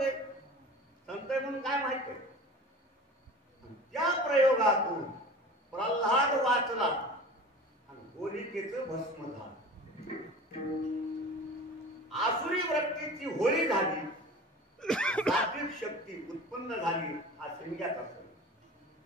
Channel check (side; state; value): both; normal; correlation 0.38